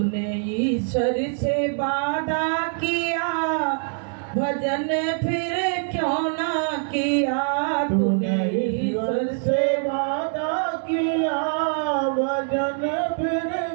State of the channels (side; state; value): left; silent; 63 dB below the other